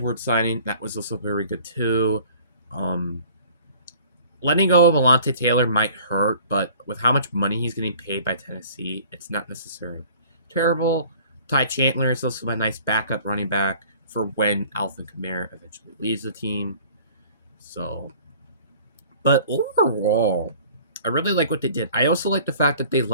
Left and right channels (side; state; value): both; inverted; correlation -0.50